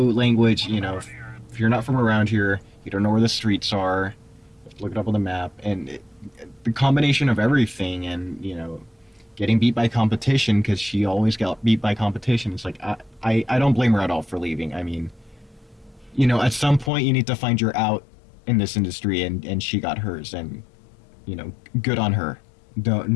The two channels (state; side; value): drops out; right; at 16.9 s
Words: if you're not from around here, you don't know where the streets are, you have to look it up on the map, and the combination of everything, and getting beat by competition, because she always got beat by competition. It's like, I don't blame her at all for leaving. I mean, at some point you need to find your out in this industry, and she got hers, and good on her.